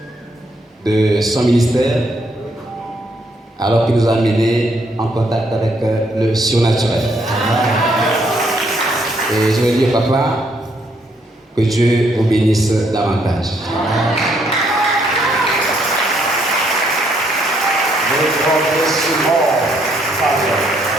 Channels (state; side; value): normal; both; correlation 0.71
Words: de son ministère alors qu'il nous a amenés en contact avec le surnaturel. Et je vais dire, papa, que Dieu vous bénisse davantage.